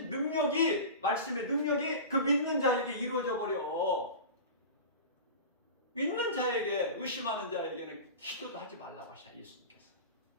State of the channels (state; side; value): inverted; both; correlation -0.31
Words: 능력이, 말씀의 능력이 그 믿는 자에게 이루어져 버려. 믿는 자에게, 의심하는 자에게는 기도도 하지 말라고 하셔, 예수님께서.